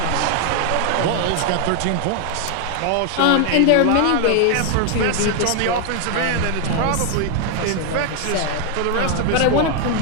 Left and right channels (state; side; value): different; both; correlation 0.01